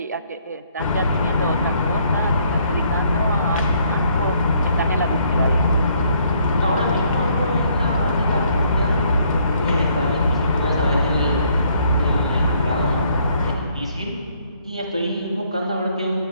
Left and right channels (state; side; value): inverted; both; correlation -0.67